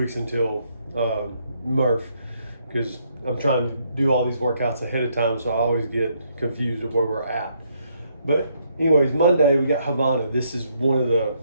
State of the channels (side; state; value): both; inverted; correlation -0.73